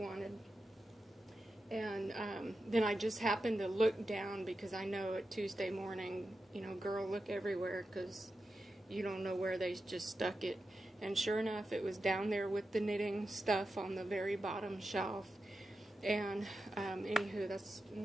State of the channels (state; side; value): normal; both; correlation 0.90